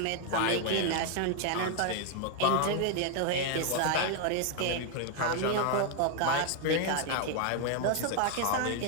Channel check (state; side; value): different; both; correlation 0.01